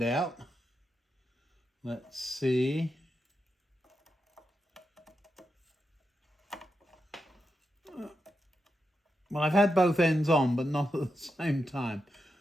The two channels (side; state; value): both; normal; correlation 0.86